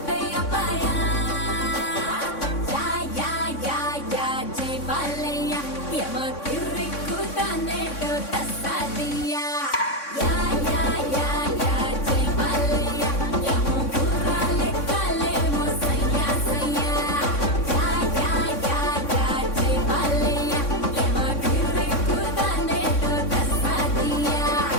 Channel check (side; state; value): right; late; 3.6 ms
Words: పాయా యా యా యా యా జై బాలయ్య యమ కిర్రిక్కు తానేటో తస్సాదియా యా యా యా యా జై బాలయ్య యమ గుర్రాలే కాలేమో సయ్యా సయ్యా యా యా యా యా జై బాలయ్య యమ కిర్రిక్కు తానేటో తస్సాదియా